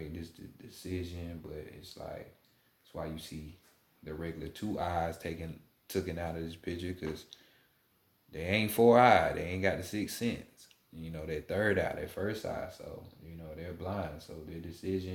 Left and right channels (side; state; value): both; identical; correlation 1.00